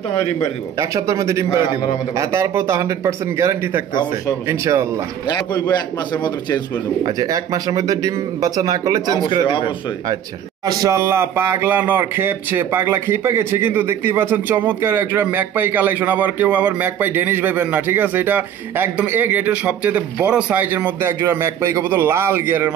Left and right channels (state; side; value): quieter; left; 9.6 dB